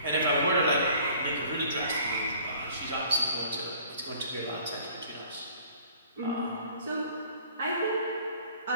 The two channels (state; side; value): inverted; both; correlation -0.53